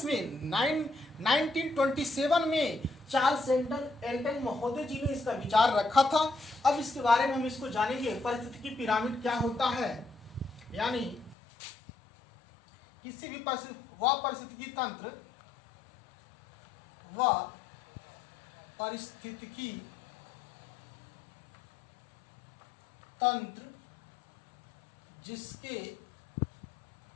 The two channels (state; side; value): drops out; right; at 11.4 s